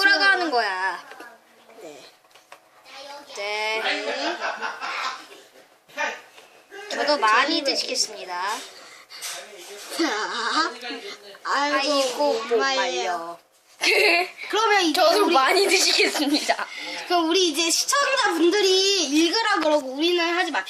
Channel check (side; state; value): both; identical; correlation 1.00